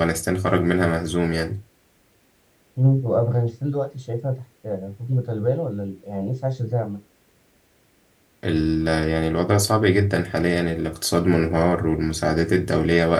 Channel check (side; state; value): both; identical; correlation 1.00